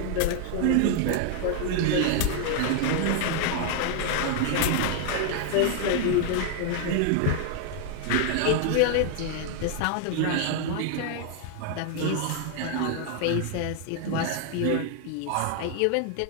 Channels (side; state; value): both; different; correlation 0.00